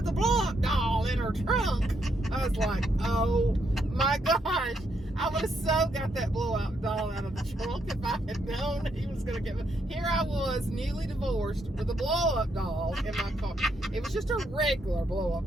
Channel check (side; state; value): both; normal; correlation 0.77